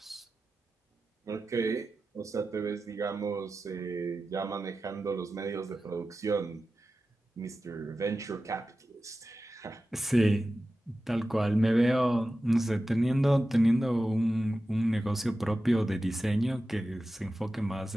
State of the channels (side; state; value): both; normal; correlation 0.94